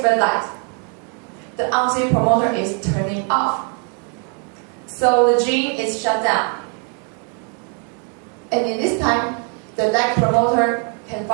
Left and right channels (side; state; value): left; quieter; 39.1 dB